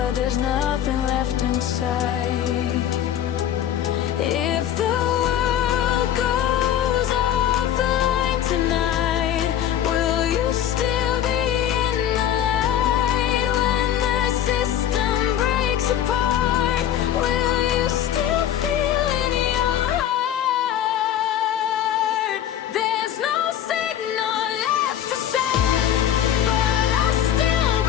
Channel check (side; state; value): right; quieter; 10.6 dB